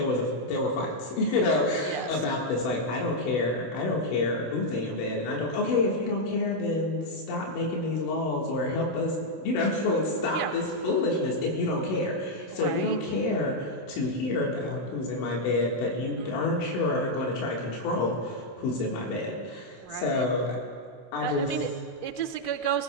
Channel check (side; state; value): right; late; 16 ms